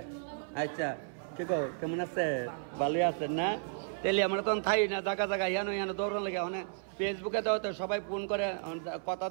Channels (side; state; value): left; silent; 56 dB below the other